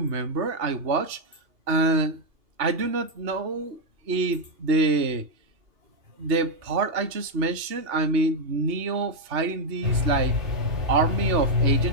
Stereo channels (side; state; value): left; late; 2.8 ms